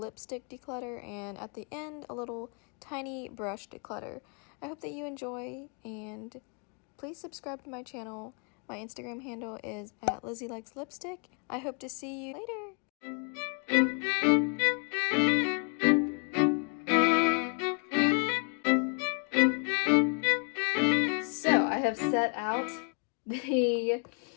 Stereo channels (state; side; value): quieter; right; 38.6 dB